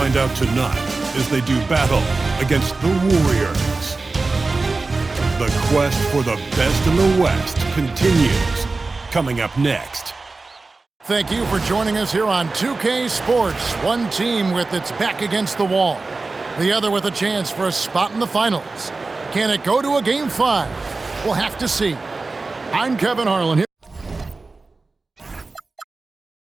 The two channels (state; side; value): quieter; left; 3.7 dB